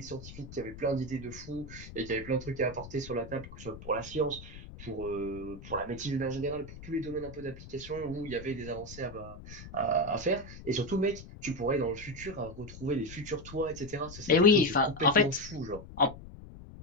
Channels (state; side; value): noise; left; rumble, 14 dB below the sound